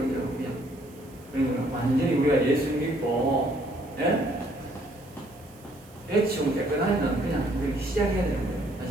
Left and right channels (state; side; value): noise; right; hiss, 26 dB below the sound